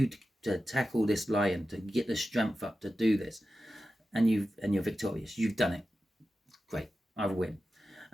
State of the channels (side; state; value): both; normal; correlation 0.93